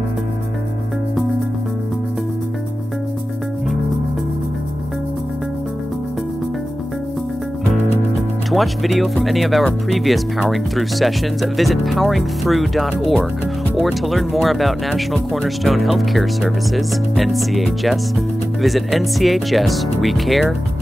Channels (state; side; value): normal; both; correlation 0.95